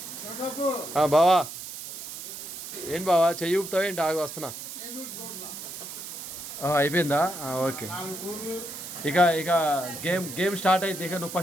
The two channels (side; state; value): right; noise; hiss, 9 dB below the sound